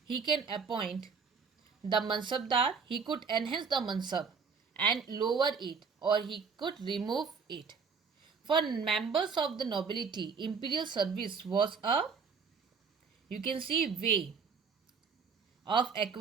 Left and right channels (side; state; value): left; quieter; 5.5 dB